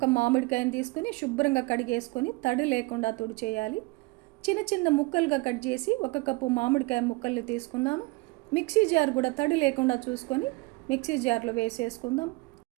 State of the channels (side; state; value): left; quieter; 23.8 dB